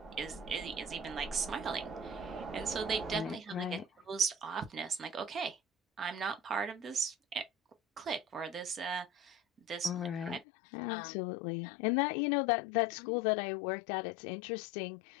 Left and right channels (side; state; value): right; drops out; at 10.5 s